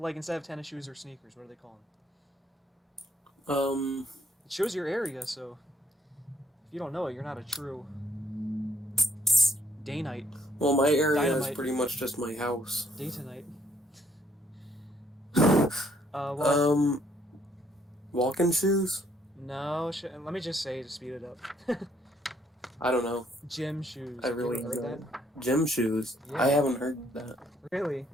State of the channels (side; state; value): both; normal; correlation 0.68